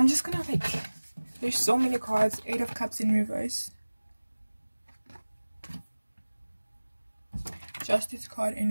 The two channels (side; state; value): both; inverted; correlation -1.00